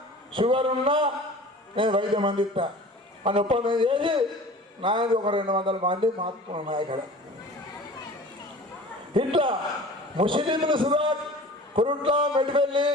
షుగర్ ఉన్నా నేను వైద్యం అందిస్తా అని ఒప్పందం చేసి నాయనది ఒక 200 మంది మాత్రం ఇక్కడ. ఇట్లా ముస్లింలు సుధా కురుట్ల, మెట్టిపల్లి,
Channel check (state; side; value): normal; both; correlation 0.41